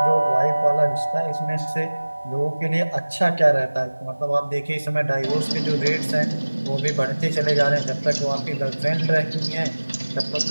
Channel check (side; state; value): both; inverted; correlation -1.00